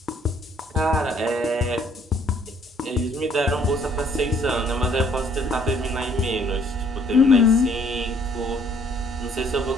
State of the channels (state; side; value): normal; both; correlation 0.63